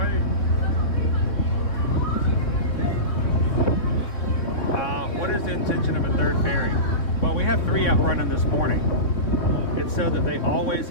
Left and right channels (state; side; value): late; right; 3.6 ms